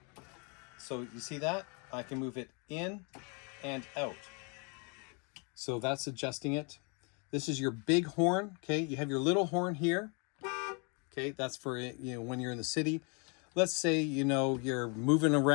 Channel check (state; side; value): quieter; right; 34.8 dB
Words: So you see that? I can move it in and out. So that's adjusting it. This is your big horn. Okay. You have your little horn here. Okay. That's for, when you're in the city. Let's say, you're moving